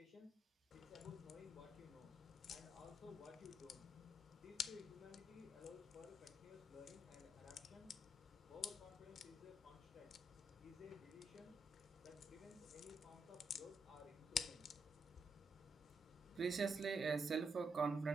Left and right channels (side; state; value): both; normal; correlation 0.79